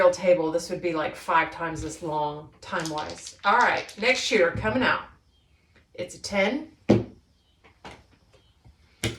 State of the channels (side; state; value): both; identical; correlation 1.00